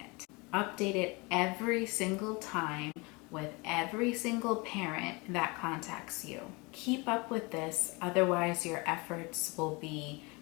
Update it every single time with every single parent that contacts you. Keep up with this, otherwise your efforts will be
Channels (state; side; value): quieter; right; 26.9 dB